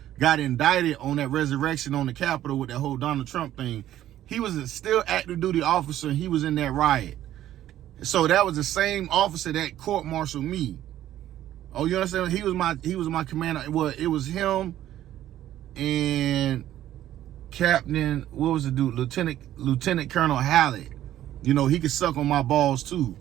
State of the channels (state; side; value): quieter; left; 12.7 dB